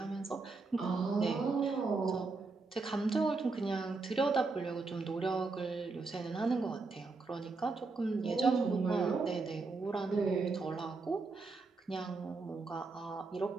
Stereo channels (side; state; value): left; quieter; 3.9 dB